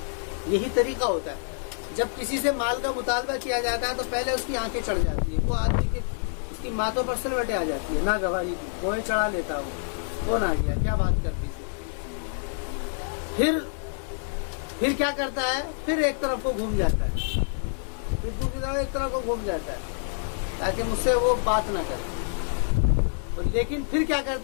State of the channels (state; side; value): silent; right; 60 dB below the other